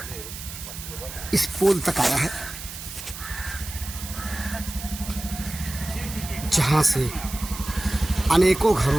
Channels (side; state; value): right; noise; hiss, 11 dB below the sound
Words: इस पोल तक आया है, जहां से अनेकों